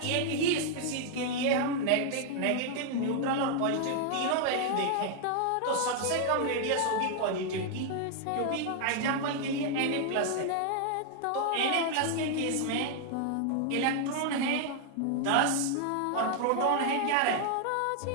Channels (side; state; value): both; different; correlation 0.00